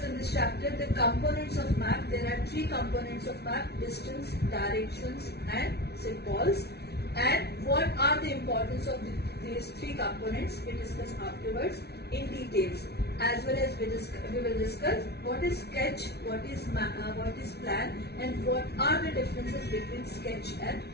the components of map. There are three components of map: distance, directions and symbols. And what are the importance of these three components we discuss afterwards in details, as well as we will discuss what is sketch, what is plan, and what are the differences between sketch and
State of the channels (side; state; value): right; late; 0.48 ms